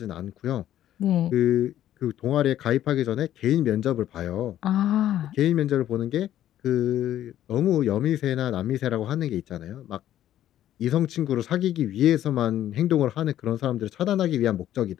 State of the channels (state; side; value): quieter; right; 12.1 dB